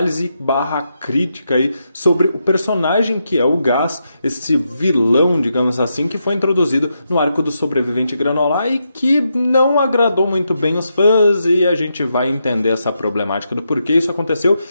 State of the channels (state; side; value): inverted; both; correlation -0.83